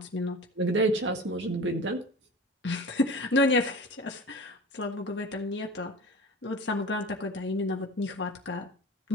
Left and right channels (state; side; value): normal; both; correlation 0.35